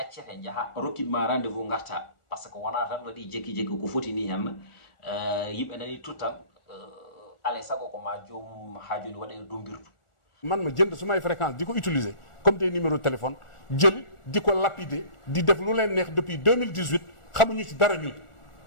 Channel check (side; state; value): right; late; 1.4 ms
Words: jaaha rokkitma rendez-vous garta par ce que wona tan waɗi jekki jekki ko foti ni hen yimɓe nani tuttan alay sago ko ma joomum ha joni waɗe dombirdu man ma jënd sumay fréquence di ko utiliser comme des numéros de téléphone jël di ko lapider di def lu leen neex depuis 2018 xamuñu ci dara ñun